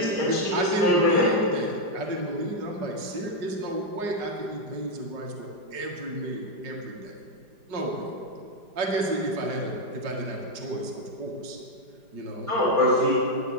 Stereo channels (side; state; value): left; late; 5.0 ms